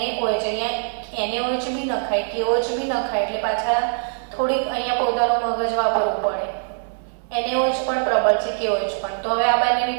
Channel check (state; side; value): silent; left; digital silence